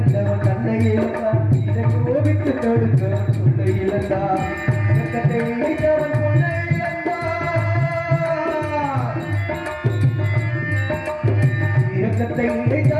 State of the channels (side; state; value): both; identical; correlation 1.00